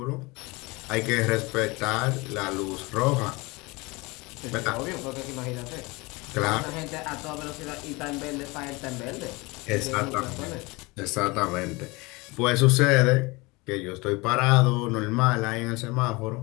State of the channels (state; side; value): quieter; right; 24.7 dB